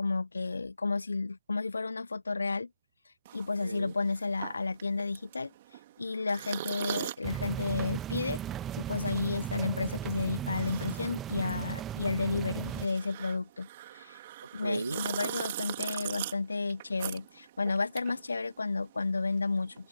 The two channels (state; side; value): inverted; both; correlation -0.77